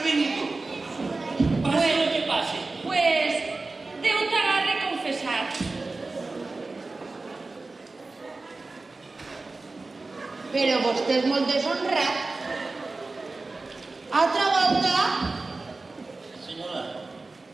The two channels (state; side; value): quieter; left; 3.5 dB